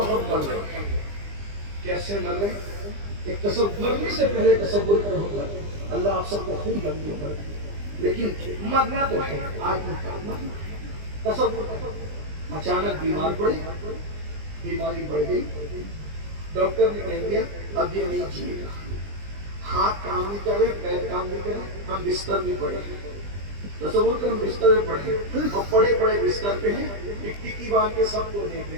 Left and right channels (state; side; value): late; left; 20 ms